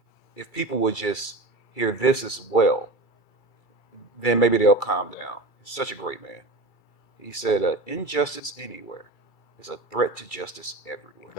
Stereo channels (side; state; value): right; late; 2.3 ms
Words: if people would just hear this as well, then maybe they'll calm down. He's such a great man. He said, injustice anywhere is a threat to justice everywhere.